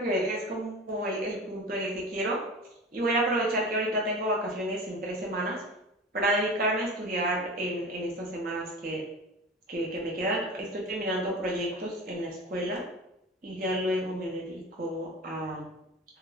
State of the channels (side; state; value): both; normal; correlation 0.33